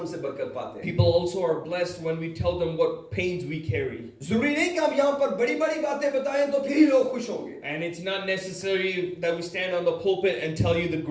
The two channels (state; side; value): identical; both; correlation 1.00